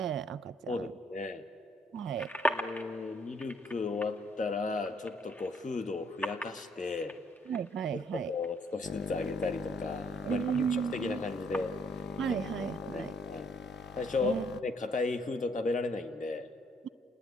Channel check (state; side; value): normal; both; correlation 0.66